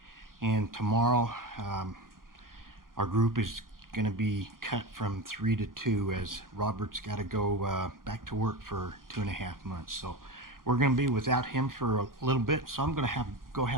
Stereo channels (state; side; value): late; left; 0.91 ms